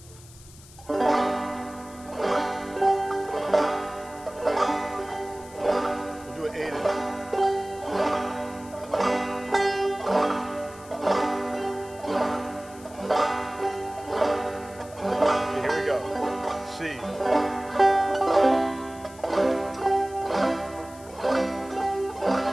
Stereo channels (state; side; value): noise; left; hiss, 21 dB below the sound